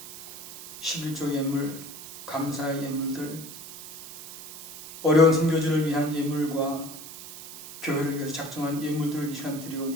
11조 예물, 감사의 예물들, 어려운 선교지를 위한 예물과 교회를 위해서 작정한 예물들을 이 시간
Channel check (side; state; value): right; noise; hiss, 13 dB below the sound